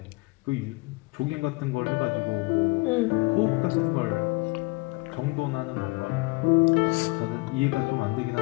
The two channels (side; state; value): right; quieter; 25.7 dB